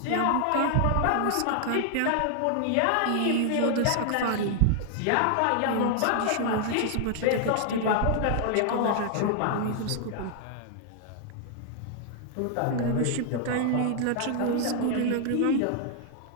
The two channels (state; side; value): different; both; correlation 0.00